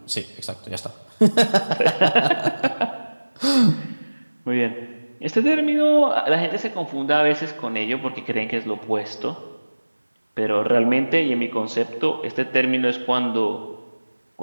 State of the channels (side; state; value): both; inverted; correlation -1.00